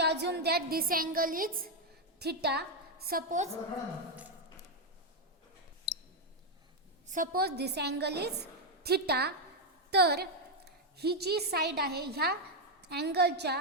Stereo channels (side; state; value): both; normal; correlation 0.02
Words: that this angle is theta. Suppose this angle is theta. तर ही जी साईड आहे, ह्या अँगलच्या